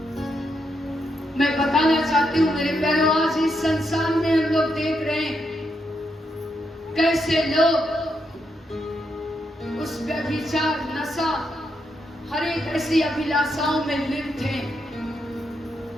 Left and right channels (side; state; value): both; normal; correlation 0.81